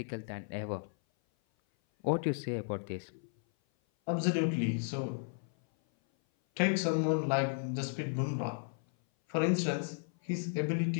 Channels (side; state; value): right; silent; 55 dB below the other